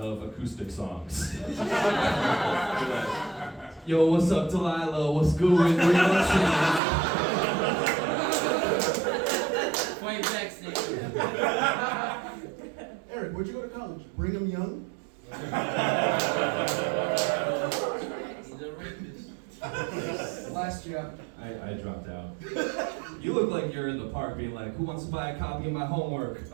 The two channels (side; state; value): left; drops out; at 6.8 s